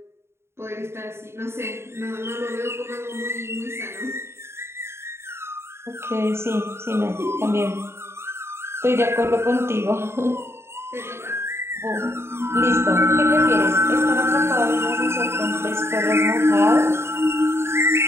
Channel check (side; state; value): left; late; 0.12 ms